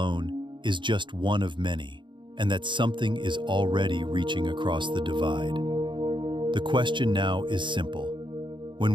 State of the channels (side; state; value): left; late; 0.23 ms